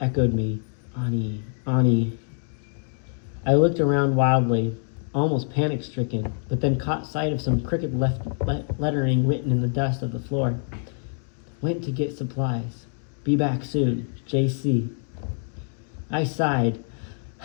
echoed me. "Ani, Ani." I looked around wildly, almost panic-stricken, but then caught sight of some crooked lettering written in the dust of the floor. "Went to get supplies. Be back soon. J.C." I sighed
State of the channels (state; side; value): silent; right; 61 dB below the other